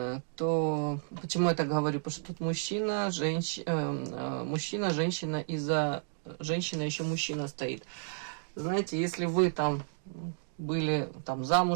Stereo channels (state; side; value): silent; left; digital silence